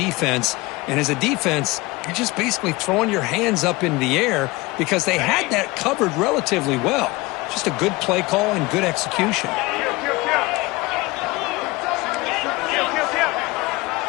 And as a defense, you're just basically throwing your hands up in the air because they had that covered relatively well. Just a good play call and good execution.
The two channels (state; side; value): quieter; right; 22.3 dB